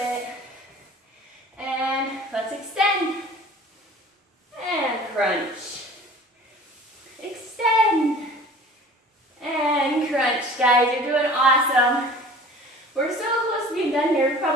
And let's extend. And crunch. Extend. And crunch. Guys, you're doing awesome. We're so close to being done here. We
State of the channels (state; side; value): normal; both; correlation 0.45